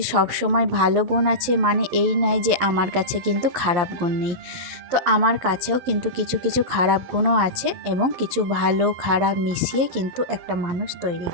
সবসময় ভালো গুণ আছে, মানে এই নয় যে আমার কাছে কিন্তু খারাপ গুণ নেই। তো আমার কাছেও কিন্তু কিছু কিছু খারাপ গুণও আছে এবং কিছু ভালো খারাপ মিশিয়ে কিন্তু একটা মানুষ তৈরি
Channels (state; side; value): late; left; 11 ms